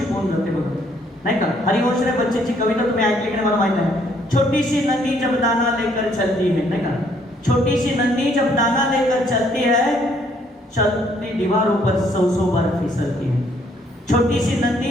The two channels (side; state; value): both; normal; correlation 0.66